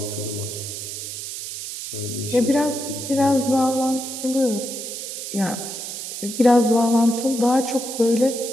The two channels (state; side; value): noise; right; hiss, 7 dB below the sound